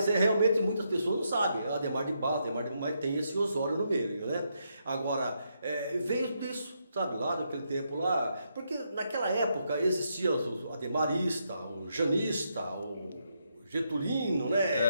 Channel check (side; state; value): both; inverted; correlation -0.80